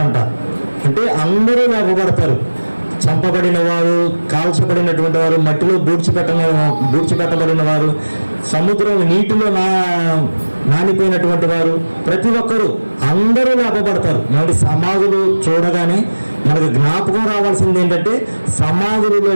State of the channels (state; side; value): inverted; both; correlation -1.00